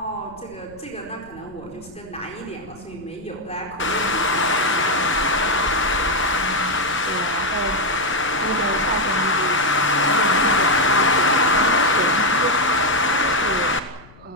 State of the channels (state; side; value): noise; left; rumble, 23 dB below the sound